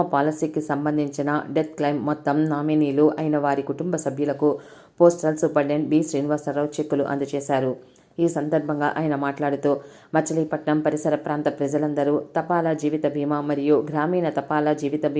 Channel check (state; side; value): identical; both; correlation 1.00